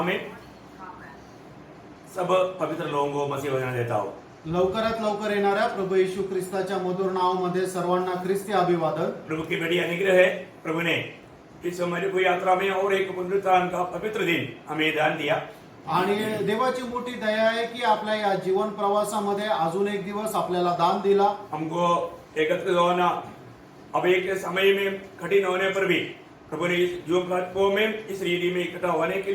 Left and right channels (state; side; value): identical; both; correlation 1.00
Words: में सब पवित्र लोगों को मसीह वचन देता हूँ। लवकरात लवकर येणाऱ्या प्रभू येशू ख्रिस्ताच्या मधुर नावामध्ये सर्वांना ख्रिस्ती अभिवादन। प्रभु की बड़ी अनुग्रह है। प्रभु ने इस हमारी कोई यात्रा में और एक पुनरुत्थान का पवित्र दिन हमें दान दिया आणि देवाची मोठी दया आहे की आपल्या या जीवन प्रवासामध्ये अजून एक दिवस आपल्याला दान दिला। हमको एकत्रित होना अब एक समय में कठिन होने पर भी प्रभु ने जो प्लेटफॉर्म में इस रीति में इकट्ठा होने के